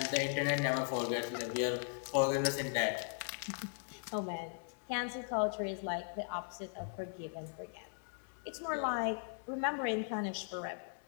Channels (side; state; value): right; silent; digital silence